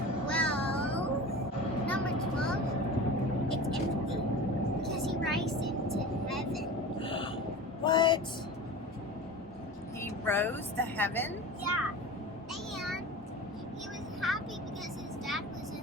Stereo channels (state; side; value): normal; both; correlation 0.33